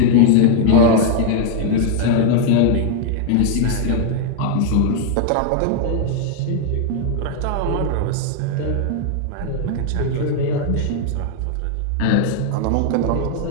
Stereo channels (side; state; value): both; different; correlation 0.00